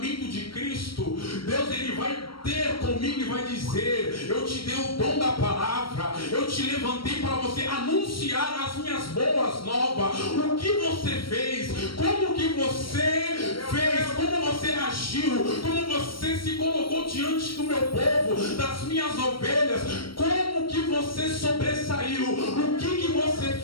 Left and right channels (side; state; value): right; late; 0.74 ms